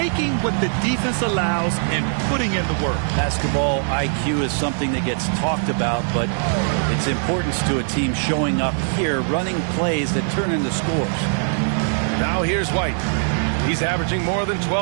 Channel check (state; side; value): silent; left; 65 dB below the other